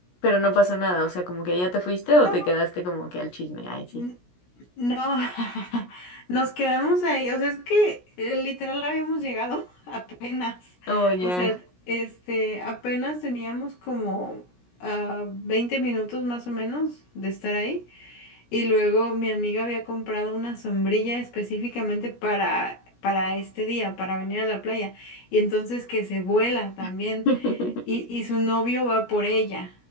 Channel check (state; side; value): late; right; 17 ms